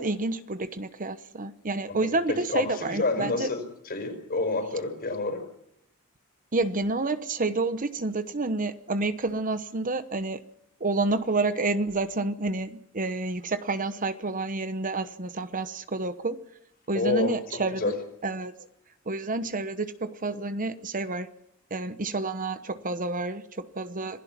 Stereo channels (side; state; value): both; normal; correlation 0.14